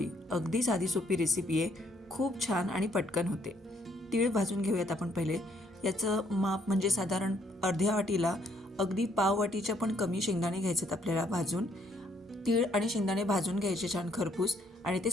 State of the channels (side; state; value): both; normal; correlation 0.68